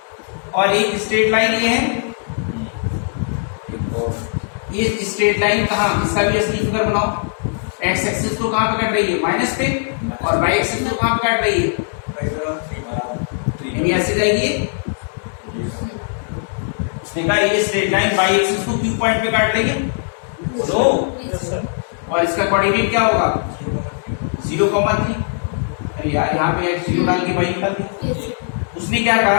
और एक स्ट्रेट लाइन ये है, ये स्ट्रेट लाइन कहाँ, इसका भी असली फिगर बनाओ। एक्स एक्सिस तो कहाँ पे कट रही है? माइनस पे, और वाई एक्सिस तो कहाँ पे कट रही है? यानी ऐसे जाएगी। उसने कहा ये स्ट्रेट लाइन वाई एक्सिस को क्यू पॉइंट पे काट लेंगे तो, और इसका कोऑर्डिनेट क्या होगा? 0,3। अरे यार यहाँ पे x 0 डाल के y निकाल दिया। उसने क्या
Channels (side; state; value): right; silent; 66 dB below the other